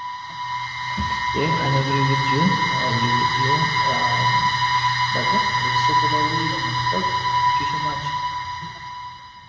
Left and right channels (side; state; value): both; identical; correlation 1.00